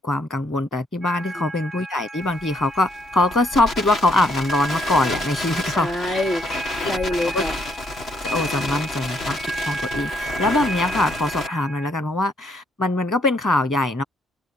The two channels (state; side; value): normal; both; correlation 0.71